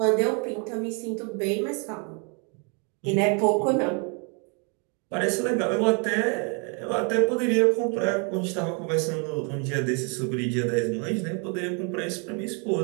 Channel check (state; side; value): quieter; left; 36.9 dB